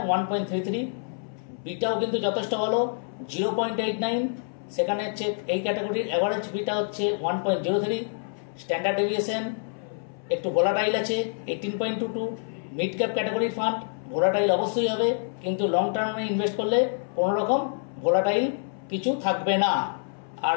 1.33। বিটাও কিন্তু যথেষ্ট ভালো, 0.89। সেখানে হচ্ছে এই ক্যাটাগরির অ্যাভারেজ বিটা হচ্ছে 1.03। স্ট্যান্ডার্ড ডেভিয়েশন একটু ভোলাটাইল আছে 18.22। মিড ক্যাপ ক্যাটাগরির ফান্ড ভোলাটাইল অবশ্যই হবে, কিন্তু লং টার্মে ইনভেস্ট করলে কোনো রকম ভোলাটাইল কিছু থাকবে না। আর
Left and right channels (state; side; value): silent; right; 60 dB below the other